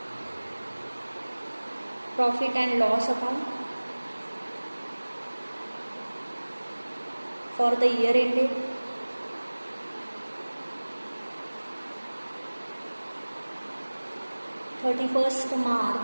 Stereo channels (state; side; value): inverted; both; correlation -1.00